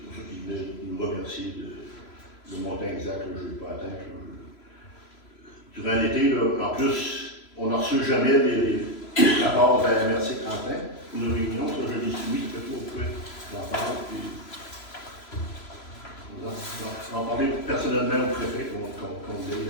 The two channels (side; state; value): right; late; 3.0 ms